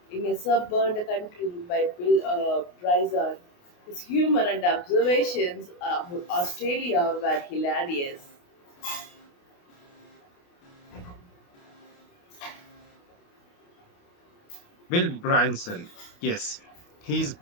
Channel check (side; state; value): right; late; 28 ms